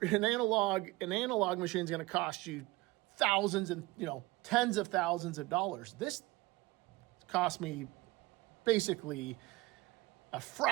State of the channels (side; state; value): left; quieter; 21.4 dB